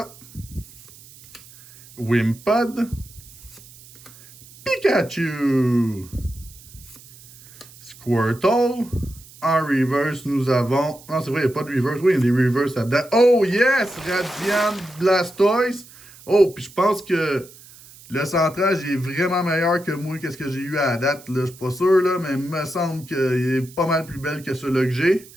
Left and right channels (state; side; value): noise; right; hiss, 21 dB below the sound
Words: Wimpod, Pikachu, Squirtle. En reverse, nous avons... Non, c'est vrai, il n'y a pas de reverse. Oui, il y a des reverse là-dedans. Oh, yes! Radiant Blastoise. Oh, puis je pense que le centrage est vraiment meilleur que moi, qu'est-ce que j'ai eu à la date. Là. Je suis pas sûr, là, mais il me semble qu'il est pas mal plus belle que celui-là que j'ai.